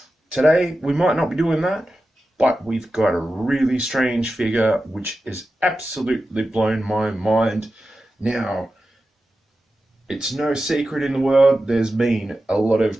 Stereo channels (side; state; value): both; normal; correlation 0.92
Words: Today, we might not be doing that, but we've got a really strange figure which has absolutely blown my mind. Now, it's no secret in the world, there's been a lot